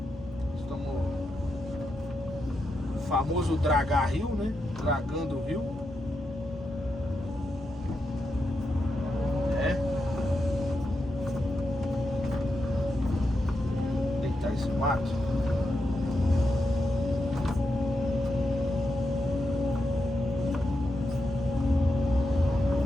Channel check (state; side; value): normal; both; correlation 0.85